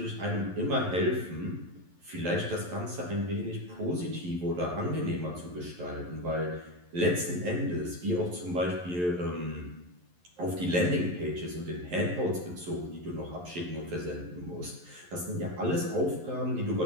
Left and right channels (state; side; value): late; left; 11 ms